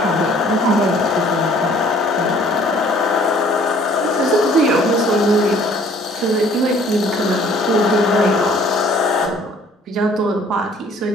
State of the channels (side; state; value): both; normal; correlation 0.56